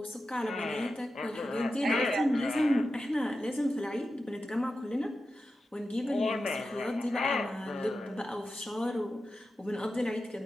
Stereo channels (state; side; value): normal; both; correlation 0.91